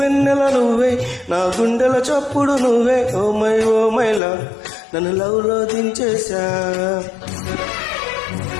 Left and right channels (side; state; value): right; drops out; at 4.2 s